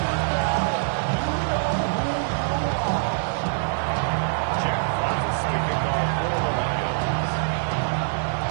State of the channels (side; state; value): left; silent; digital silence